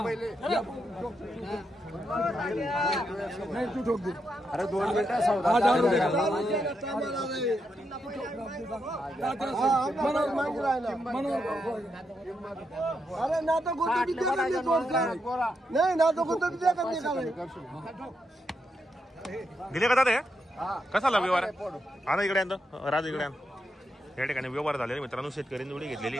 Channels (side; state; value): both; normal; correlation 0.83